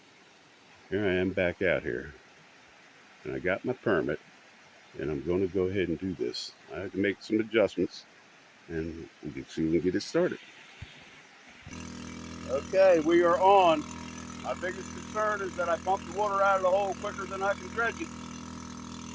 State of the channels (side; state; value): both; identical; correlation 1.00